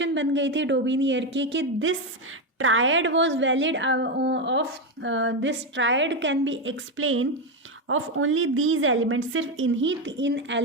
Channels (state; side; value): normal; both; correlation 0.09